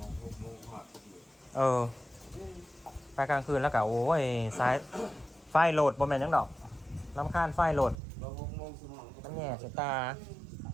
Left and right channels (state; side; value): drops out; left; at 8.0 s